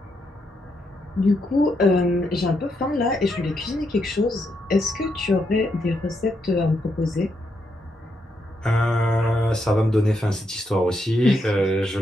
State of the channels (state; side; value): normal; both; correlation 0.80